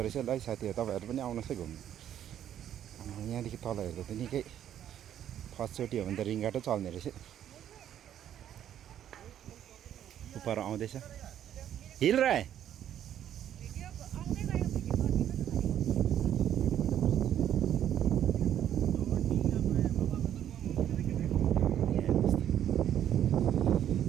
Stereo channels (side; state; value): left; quieter; 10.5 dB